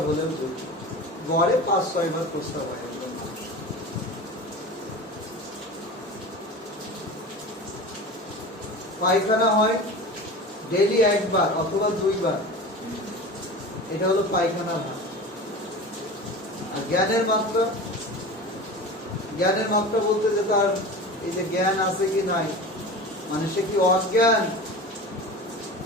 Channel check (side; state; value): both; normal; correlation 0.33